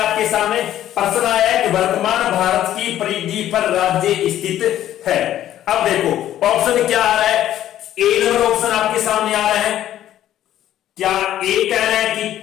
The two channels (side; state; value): right; quieter; 12.2 dB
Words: सामने? प्रश्न आया है कि वर्तमान भारत की परिधि पर राज्य स्थित है। अब देखो ऑप्शन क्या आ रहा है। ए नंबर ऑप्शन आपके सामने आ रहा है। क्या ए कह रहा है कि